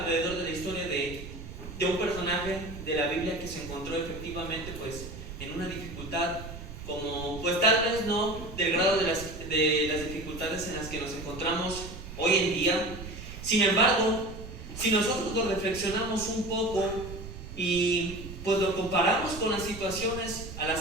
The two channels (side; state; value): right; noise; rumble, 11 dB below the sound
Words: de la historia de un personaje de la Biblia que se encontró efectivamente pues en una dificultad, como pues tal vez no del grado de las dificultades en las que nos encontramos hoy en día. Sin embargo, si nosotros lo reflexionamos un poco y pues lo comparamos con las situaciones a las